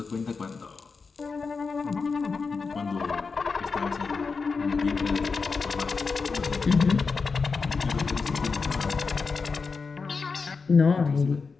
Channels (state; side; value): quieter; right; 4.8 dB